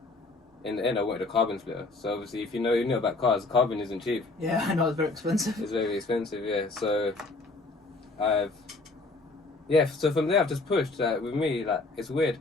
in the end I wanted a carbon splitter. So obviously, if you know about cars, carbon isn't cheap. Yeah, I know it's very expensive. It's very expensive, yeah. So so from there I've just pushed. With me, like it's weird.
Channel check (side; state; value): right; quieter; 3.4 dB